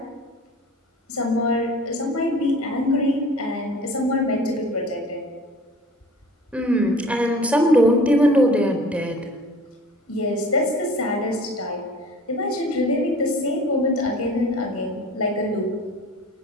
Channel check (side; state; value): both; normal; correlation 0.45